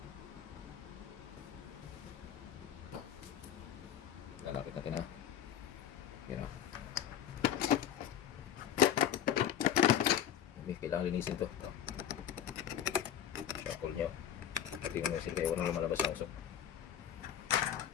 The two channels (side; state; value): right; quieter; 9.9 dB